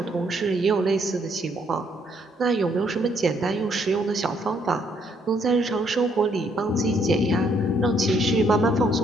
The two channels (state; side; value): normal; both; correlation 0.69